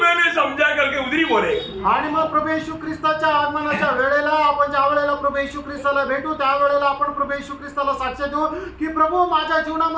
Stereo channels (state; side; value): identical; both; correlation 1.00